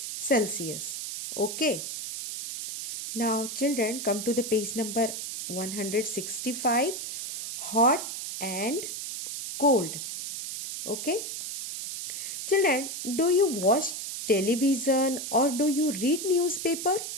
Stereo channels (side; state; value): right; noise; hiss, 6 dB below the sound